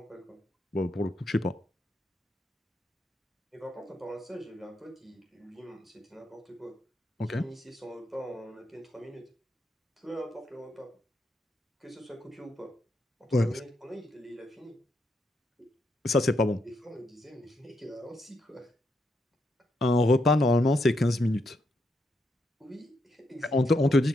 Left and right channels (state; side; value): normal; both; correlation 0.80